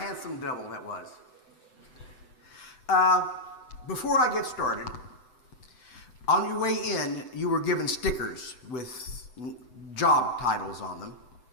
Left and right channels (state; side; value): late; right; 7.9 ms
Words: devil that was. Before I get started, on your way in, you were given stickers with job titles on them.